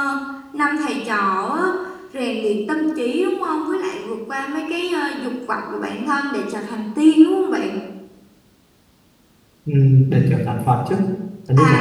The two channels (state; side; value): identical; both; correlation 1.00